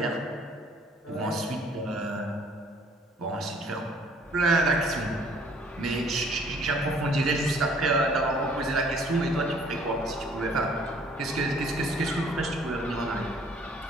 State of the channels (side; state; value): both; normal; correlation 0.58